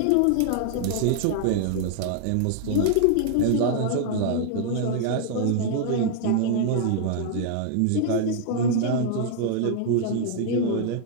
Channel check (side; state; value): both; different; correlation 0.00